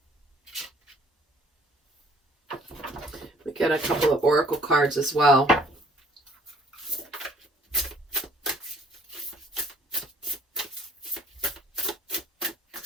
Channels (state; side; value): normal; both; correlation 0.59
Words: get a couple of oracle cards as well.